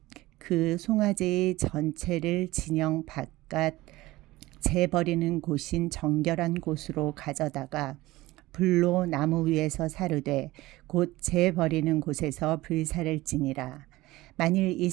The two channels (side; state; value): left; quieter; 18.7 dB